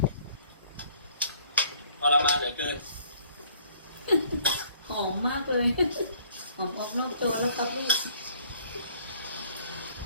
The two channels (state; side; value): inverted; both; correlation -0.59